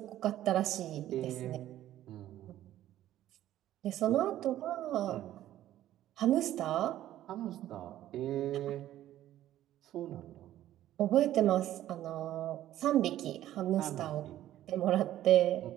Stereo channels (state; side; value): quieter; left; 13.1 dB